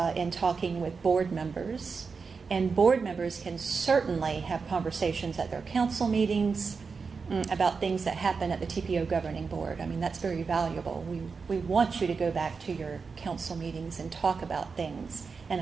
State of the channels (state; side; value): quieter; left; 5.0 dB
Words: in talking with board members, and board members can certainly have conversations at their council meetings about things that happen at the Tpo Governing Board. I mean, that's very valuable. We want you to go back to your council meetings and talk about things, and